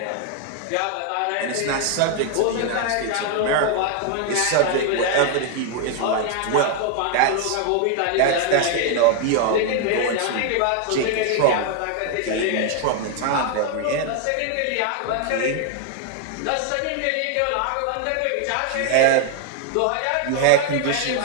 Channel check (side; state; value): both; different; correlation 0.01